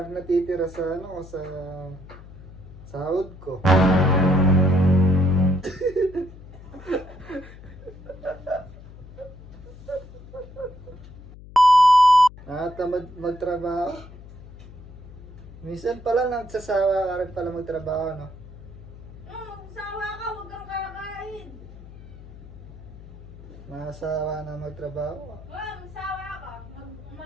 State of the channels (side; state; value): left; noise; hum, 17 dB below the sound